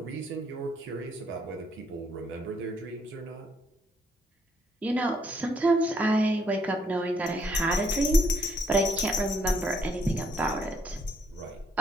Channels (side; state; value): both; normal; correlation 0.70